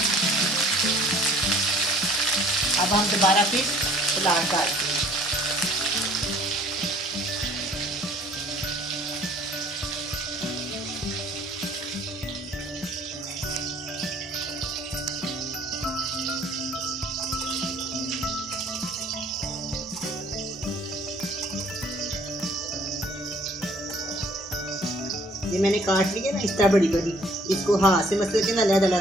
अब हम दोबारा फिर सलाद काटते हैं। ये मैंने काट लिया ना इस तरह बड़ी बड़ी, इसको हाथ से मसल के ना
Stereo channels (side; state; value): both; normal; correlation 0.56